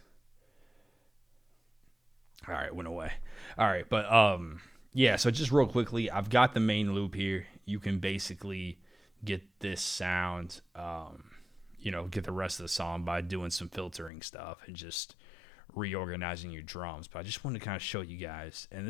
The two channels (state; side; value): drops out; right; at 14.1 s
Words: All right, went away. All right, but yeah. So just real quickly, I've got the main loop here. You can basically get this sound, get the rest of the song by doing some filtering stuff and just reorganizing your drums. But I just wanted to kind of show you guys, and